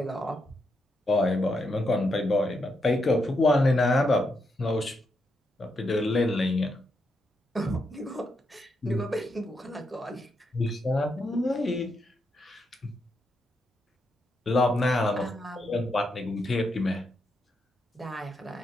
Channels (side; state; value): both; normal; correlation 0.81